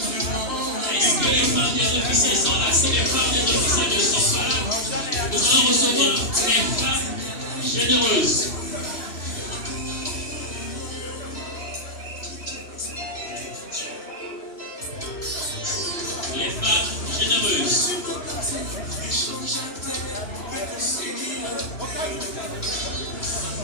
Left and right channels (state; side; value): late; right; 2.9 ms